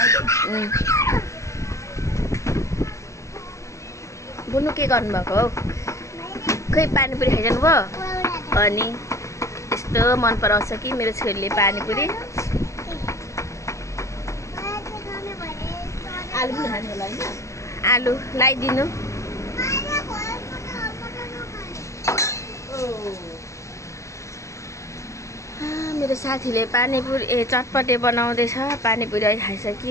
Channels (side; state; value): right; late; 0.15 ms